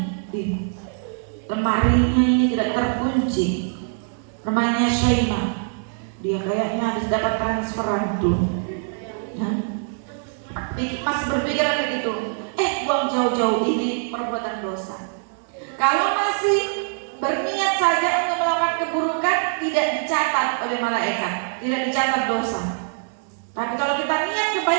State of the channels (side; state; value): left; silent; 59 dB below the other